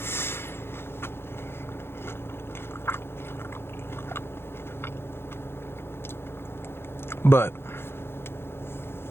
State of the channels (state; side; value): late; right; 0.11 ms